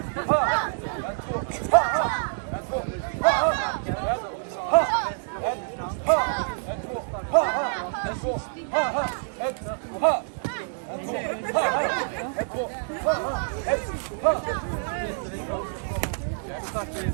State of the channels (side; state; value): left; silent; digital silence